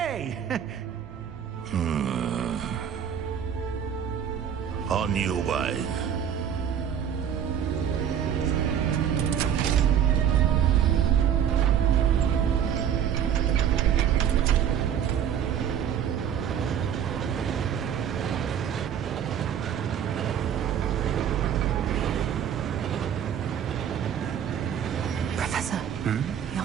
On your way. Professor, the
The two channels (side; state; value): left; quieter; 9.0 dB